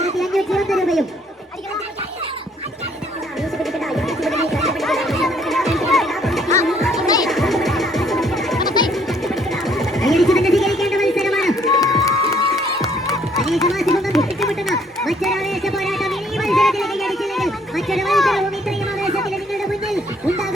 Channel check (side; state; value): both; normal; correlation 0.64